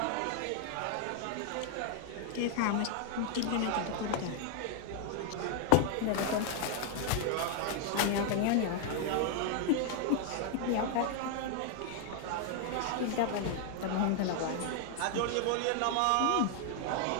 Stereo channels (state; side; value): different; both; correlation 0.00